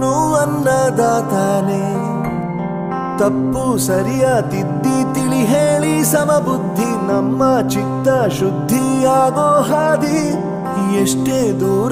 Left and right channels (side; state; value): both; identical; correlation 1.00